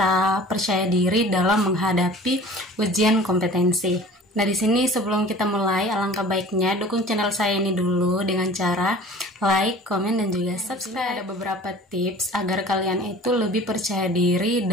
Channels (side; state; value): both; normal; correlation 0.44